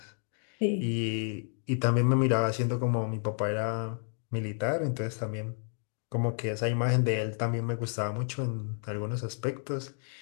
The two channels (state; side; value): silent; right; 57 dB below the other